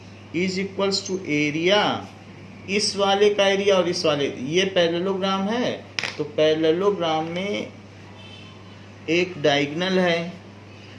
is equals to area, इस वाले का एरिया और इस वाले, ये पैरेललोग्राम है तो पैरेललोग्राम में एक डायगोनल है,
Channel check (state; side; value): identical; both; correlation 1.00